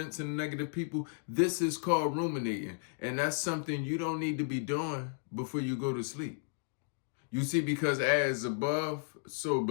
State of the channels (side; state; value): right; silent; digital silence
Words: and negative people, this is called ruminating. And that's something you don't need to be doing before you go to sleep. You see, because as above, so